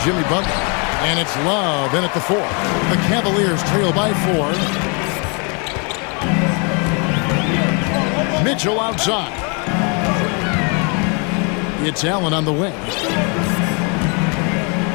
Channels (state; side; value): quieter; right; 34.9 dB